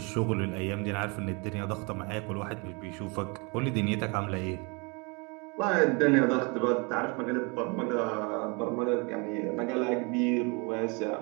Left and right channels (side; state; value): left; quieter; 30.8 dB